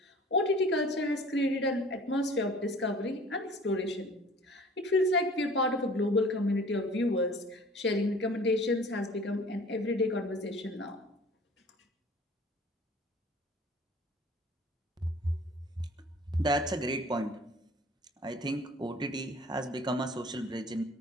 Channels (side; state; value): both; normal; correlation 0.48